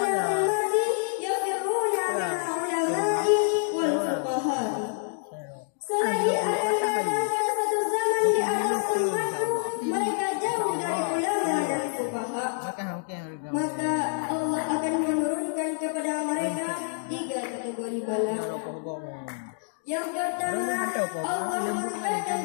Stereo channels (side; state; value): right; silent; digital silence